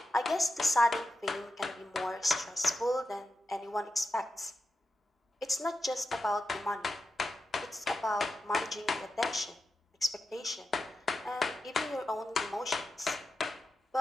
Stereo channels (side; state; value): both; normal; correlation 0.90